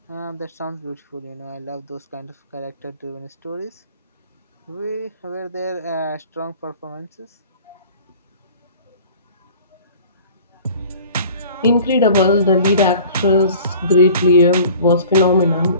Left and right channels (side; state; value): both; inverted; correlation -0.46